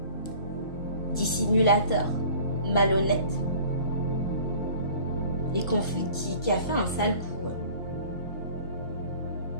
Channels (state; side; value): inverted; both; correlation -0.48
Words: dissimulateur, malhonnête, et qui a fait un sale coup.